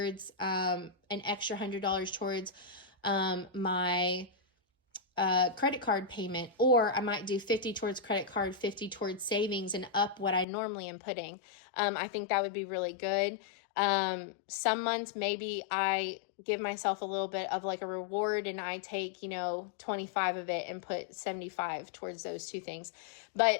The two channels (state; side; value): drops out; right; at 10.5 s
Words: an extra $100 towards my credit card payment, or I might do 50 towards credit card, 50 towards savings, and up what I normally am putting. I think that would be really good. Some months maybe I give myself a little bit of like a reward and I take, 25 of it and put 75 towards those 2 things.